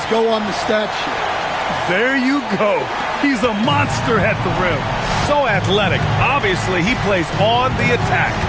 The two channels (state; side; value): identical; both; correlation 1.00